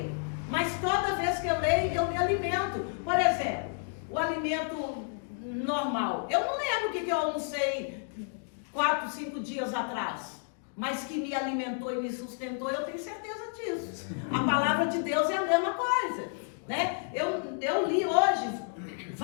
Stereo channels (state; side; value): silent; right; digital silence